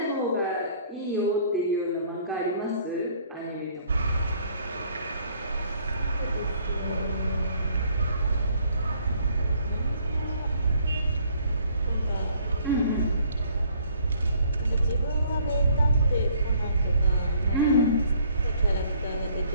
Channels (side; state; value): both; inverted; correlation -0.61